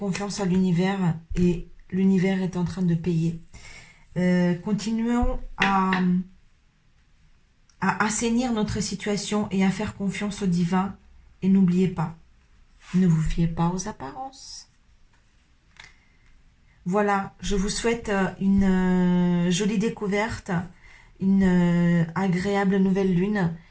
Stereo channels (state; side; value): identical; both; correlation 1.00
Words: à l'univers et l'univers est en train de payer. Continuons à assainir notre situation et à faire confiance au divin. Et n'oubliez pas, ne vous fiez pas aux apparences. Voilà, je vous souhaite une jolie découverte, une agréable nouvelle lune.